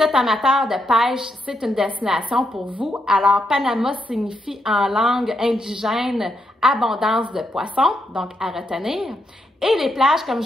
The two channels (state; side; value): normal; both; correlation 0.81